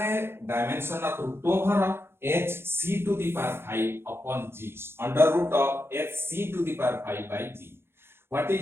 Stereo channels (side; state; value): left; late; 0.11 ms